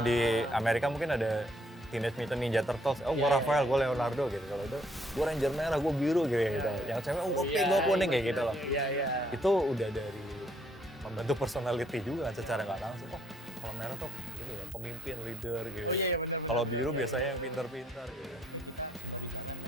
di Amerika mungkin ada Teenage Mutant Ninja Turtles, oh gue Iya, Raphael, gue Leonardo gitu. Kalau itu gue Ranger merah, gue biru gitu. Yang cewek, oh gue pink, gue kuning kayak gitu loh. Iya. Itu udah dari membentuk personality juga kan secara nggak langsung. Oh kalau merah tuh ini ya pemimpin, leader gitu. Oh iya benar. Kalau biru biasanya yang pintar-pintar gitu.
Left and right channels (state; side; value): normal; both; correlation 0.68